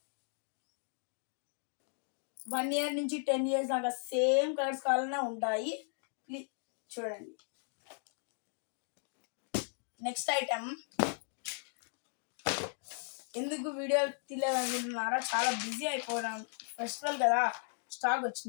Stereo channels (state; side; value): silent; right; 54 dB below the other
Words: వన్ ఇయర్ నుంచి 10 years దాకా సేమ్ కలర్స్ కావాలనే ఉంటాయి. ప్లీజ్ చూడండి. నెక్స్ట్ ఐటమ్, ఎందుకు వీడియో తీయలేదనుకుంటున్నారా? చాలా బిజీ అయిపోవడం, ఫెస్టివల్ కదా, స్టాక్